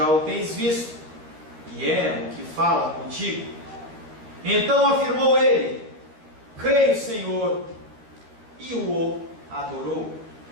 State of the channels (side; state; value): left; late; 13 ms